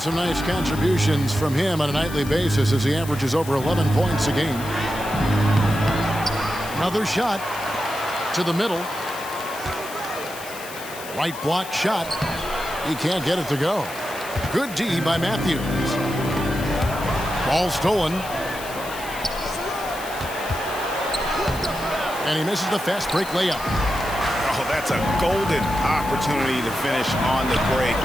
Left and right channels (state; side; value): noise; left; hiss, 14 dB below the sound